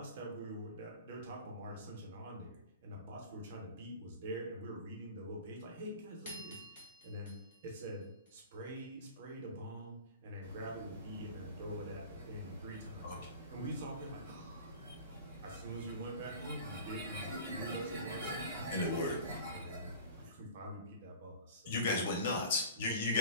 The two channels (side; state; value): both; inverted; correlation -0.39